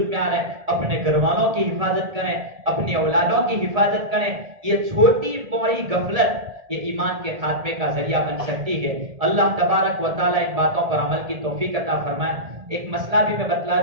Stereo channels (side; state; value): left; late; 1.7 ms